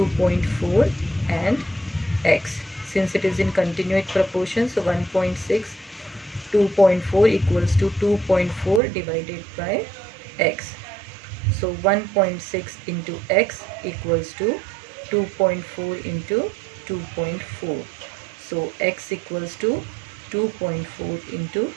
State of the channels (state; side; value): drops out; left; at 8.8 s